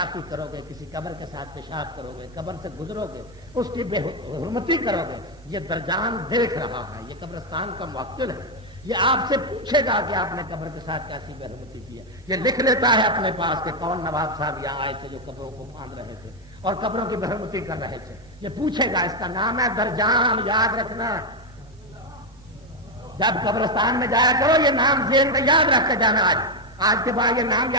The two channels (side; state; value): both; normal; correlation 0.04